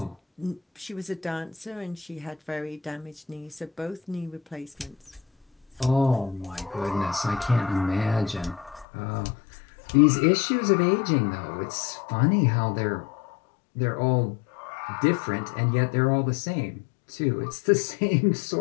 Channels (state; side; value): drops out; right; at 8.8 s